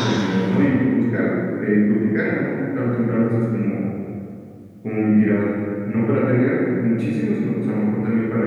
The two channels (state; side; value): identical; both; correlation 1.00